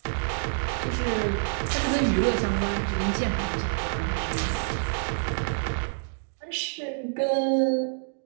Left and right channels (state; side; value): silent; left; digital silence